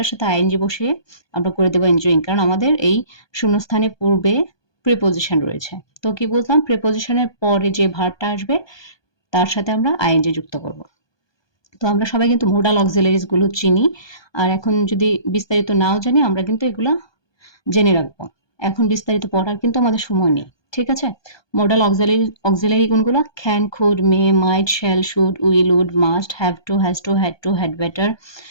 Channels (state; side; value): late; right; 1.2 ms